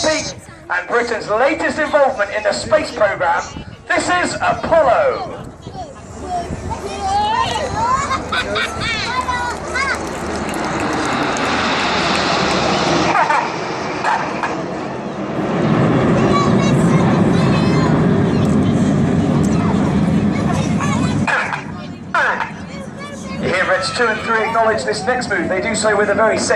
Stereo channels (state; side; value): identical; both; correlation 1.00